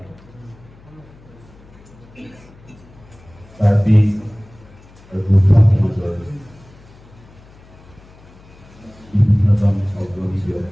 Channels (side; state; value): left; noise; hum, 24 dB below the sound